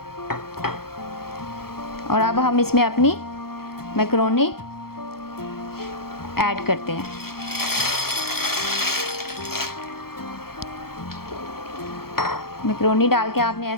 और अब हम इसमें अपनी मैकरोनी ऐड करते हैं। मैकरोनी डाल के आपने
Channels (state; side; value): late; right; 0.94 ms